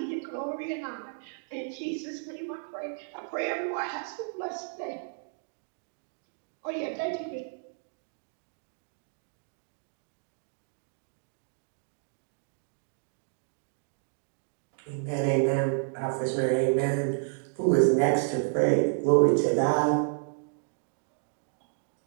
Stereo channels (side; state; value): left; silent; digital silence